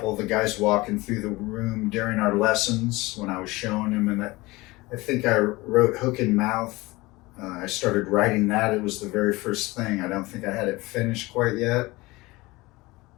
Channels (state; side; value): quieter; right; 21.4 dB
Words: of the guys walking through the room during our lessons when I was showing him, and I think I wrote Hook and Mouth. I started writing that. It was the very first thing. I don't think I had it finished quite yet.